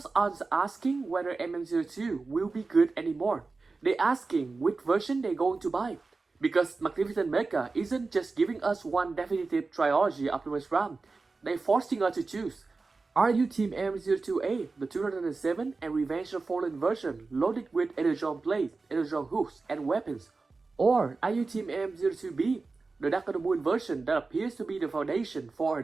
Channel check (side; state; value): left; quieter; 3.9 dB